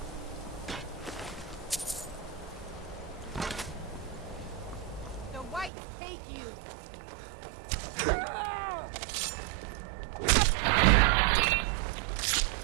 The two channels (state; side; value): drops out; left; at 5.7 s